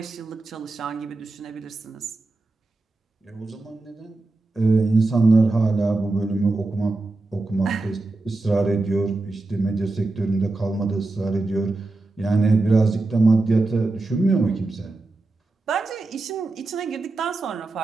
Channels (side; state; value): left; quieter; 3.1 dB